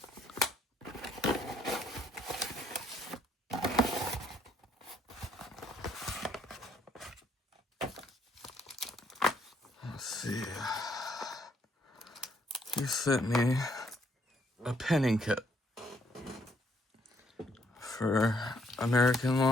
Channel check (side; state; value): both; normal; correlation 0.68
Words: Let's see. He sent me a pinning kit for American